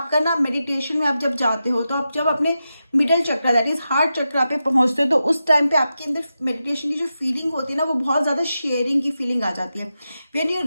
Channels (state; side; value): inverted; both; correlation -0.90